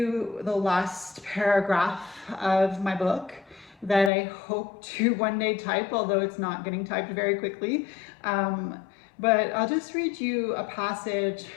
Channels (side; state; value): right; drops out; at 4.1 s